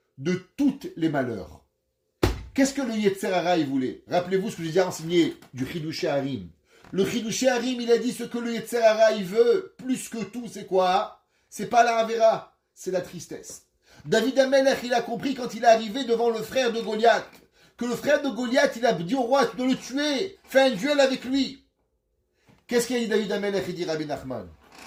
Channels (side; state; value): both; identical; correlation 1.00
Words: de tous les malheurs? Qu'est-ce que le Yetzer Hara il voulait? Rappelez-vous ce que j'ai déjà enseigné du Chidushé Harim. Le Chidushé Harim, il a dit ce que le Yetzer Hara il veut, plus que tout, c'est quoi? C'est pas la Avera, c'est la tristesse. David Amelech, il a compris quand il est arrivé devant le frère de Goliath, que le frère de Goliath, il a dit au roi de le tuer, fait un duel avec lui. Qu'est-ce qu'il a dit David Amelech? Il dit Rabbi Nachman.